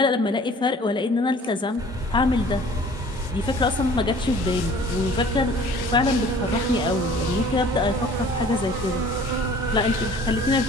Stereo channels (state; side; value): normal; both; correlation 0.50